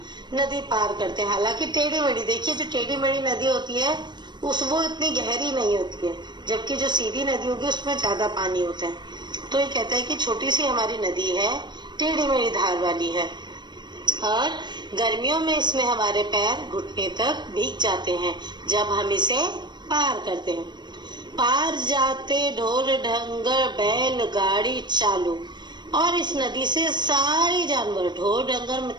नदी पार करते हैं। हालांकि टेढ़ी मेढ़ी, देखिए जो टेढ़ी मेढ़ी नदी होती है वो इतनी गहरी नहीं होती है, जबकि जो सीधी नदी होगी उसमें ज्यादा पानी होता है। तो ये कहता है कि छोटी सी हमारी नदी है, टेढ़ी मेढ़ी धार वाली है और गर्मियों में इसमें हमारे पैर घुटने तक भीग जाते हैं जब हम इसे पार करते हैं। पार जाते ढोर ढंगर बैलगाड़ी चालू, और इस नदी से सारे जानवर, ढोर ढंगर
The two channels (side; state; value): left; late; 0.22 ms